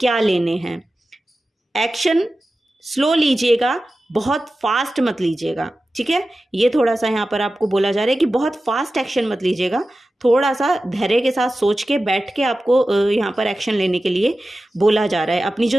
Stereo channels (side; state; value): both; normal; correlation 0.94